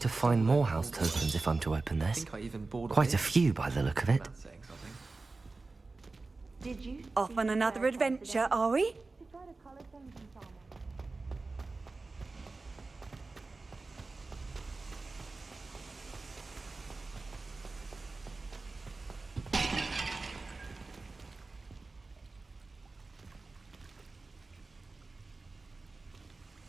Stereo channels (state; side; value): quieter; left; 3.6 dB